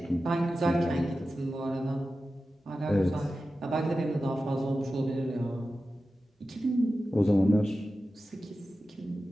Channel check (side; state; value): both; normal; correlation 0.93